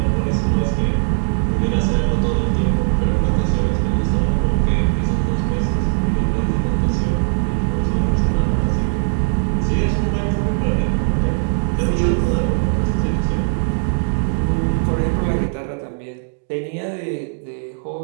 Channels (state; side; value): silent; left; digital silence